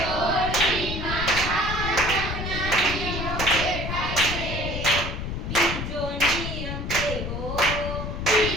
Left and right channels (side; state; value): left; noise; rumble, 4 dB below the sound